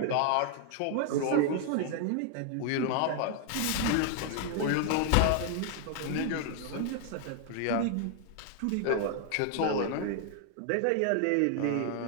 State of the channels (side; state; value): both; different; correlation 0.00